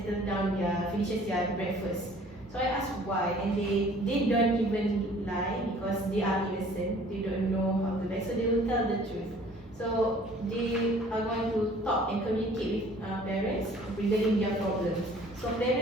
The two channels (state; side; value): normal; both; correlation 0.53